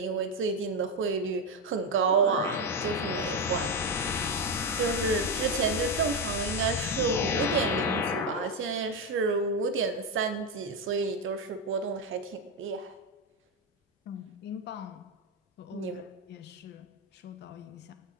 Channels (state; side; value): normal; both; correlation 0.10